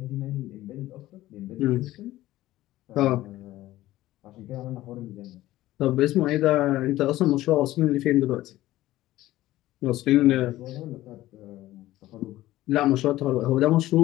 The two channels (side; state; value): right; quieter; 15.8 dB